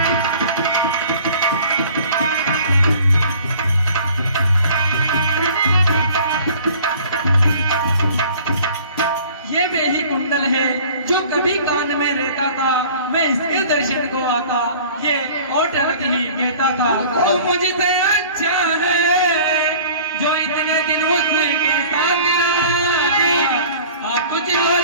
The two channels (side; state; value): both; inverted; correlation -0.47